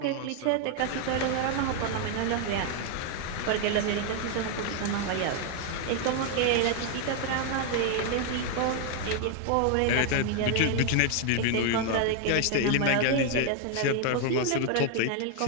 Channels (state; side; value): different; both; correlation 0.01